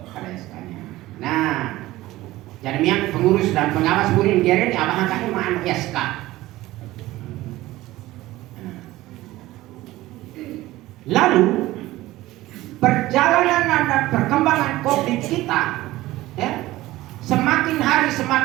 ada SK-nya. Nah jadi yang pengurus dan pengawas burin geren abang angkatnya mana SK. Lalu perjalanan dan perkembangan COVID kita semakin hari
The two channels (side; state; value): left; quieter; 17.2 dB